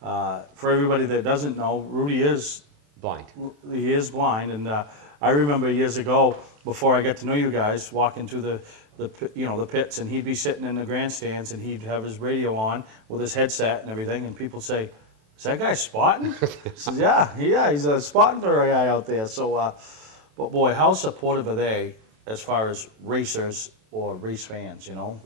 for everybody that doesn't know, Rudy is blind. He is blind, and I remember years ago, before I got to know you guys, walking through the pits, and he'd be sitting in the grandstands, and he'd have his radio on with his headset and everything, and people say, "Is that guy spotting?" I says, "Yeah, he's spotting for a guy out there." So, but boy, how supportive are they as far as racers or race fans? You know,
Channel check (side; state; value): left; late; 27 ms